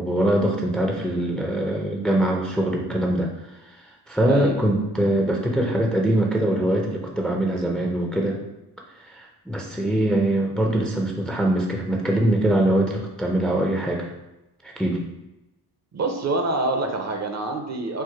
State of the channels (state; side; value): normal; both; correlation 0.69